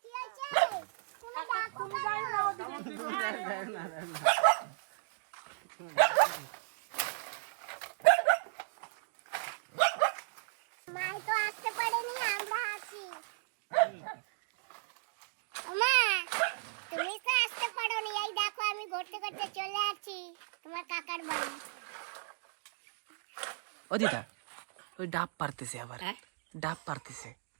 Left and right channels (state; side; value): silent; left; digital silence